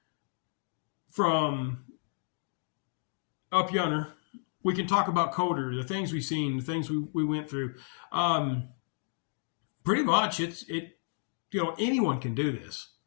From up yonder, we can talk about Coder, the things we've seen, the things we went through. Pretty much anyone can do this.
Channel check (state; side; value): silent; right; digital silence